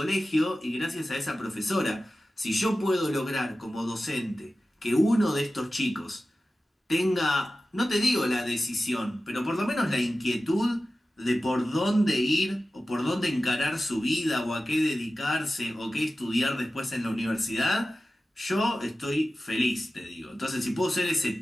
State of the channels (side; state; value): both; normal; correlation 0.95